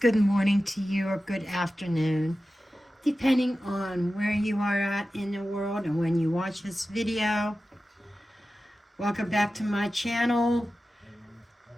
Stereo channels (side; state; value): both; normal; correlation 0.94